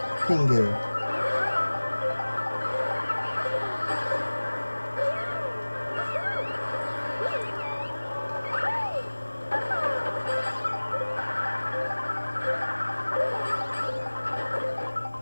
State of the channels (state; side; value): inverted; both; correlation -1.00